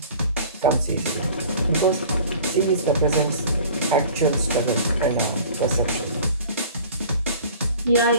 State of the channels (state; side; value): inverted; both; correlation -0.45